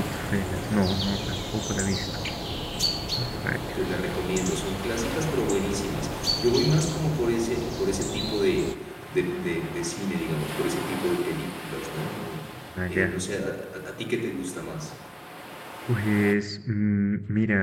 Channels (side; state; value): both; identical; correlation 1.00